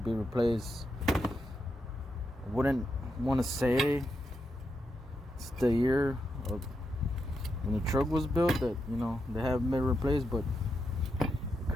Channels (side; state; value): both; normal; correlation 0.84